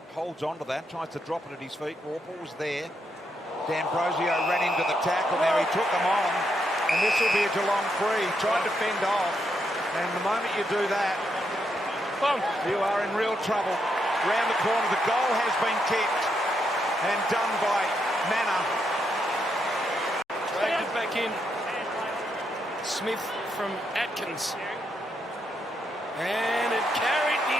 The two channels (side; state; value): both; normal; correlation 0.80